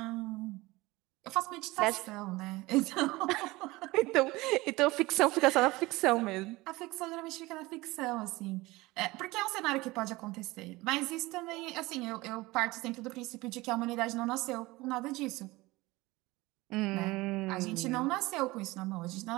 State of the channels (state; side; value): quieter; left; 20.9 dB